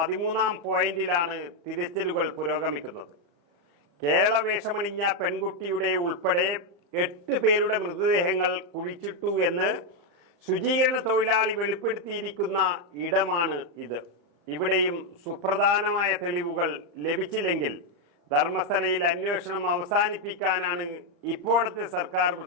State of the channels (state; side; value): late; left; 35 ms